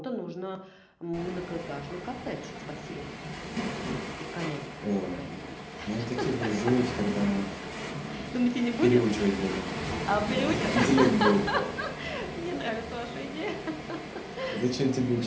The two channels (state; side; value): identical; both; correlation 1.00